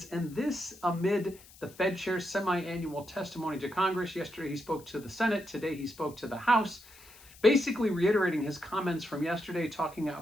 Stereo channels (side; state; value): left; noise; hiss, 22 dB below the sound